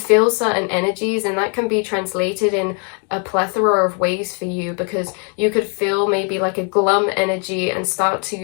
certain energies, and that can be translated in a plethora of ways for you, because you could feel maybe like a glum energy and start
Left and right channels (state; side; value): quieter; right; 39.2 dB